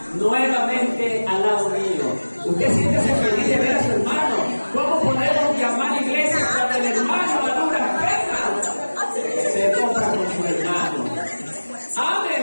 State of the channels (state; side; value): inverted; both; correlation -1.00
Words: nuevamente al lado mío. ¿Usted siente feliz de ver a su hermano? ¿Cómo podemos llamar iglesia cuando el hermano a duras penas se toca con su hermano?